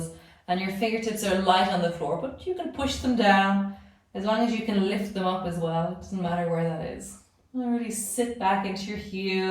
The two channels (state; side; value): identical; both; correlation 1.00